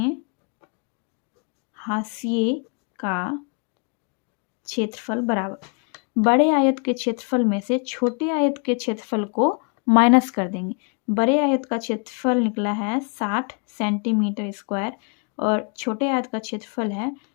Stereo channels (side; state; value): right; quieter; 37.7 dB